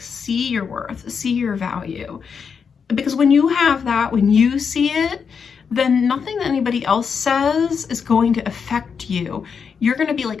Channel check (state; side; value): quieter; right; 6.3 dB